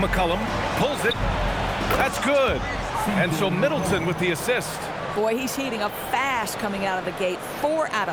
Pulls it. That's good. And so Middleton with the assist. Boy, he's heating up fast coming out of the gate. 4 out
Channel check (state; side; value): identical; both; correlation 1.00